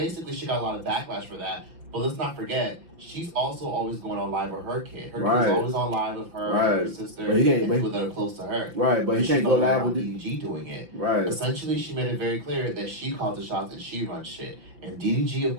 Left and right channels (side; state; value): left; late; 5.8 ms